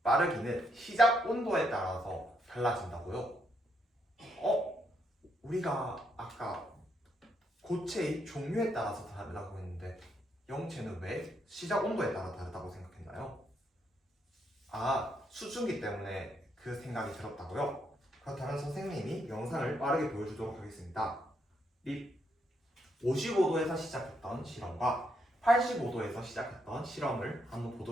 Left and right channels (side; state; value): both; normal; correlation 0.76